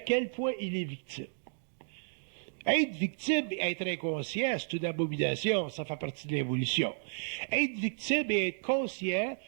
point il est victime. Être victime et être inconscient, c'est une abomination, ça fait partie de l'évolution. Être victime et être conscient,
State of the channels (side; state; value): left; silent; digital silence